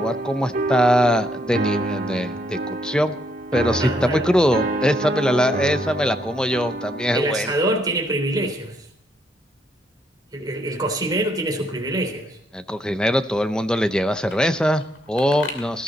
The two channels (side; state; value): both; normal; correlation 0.73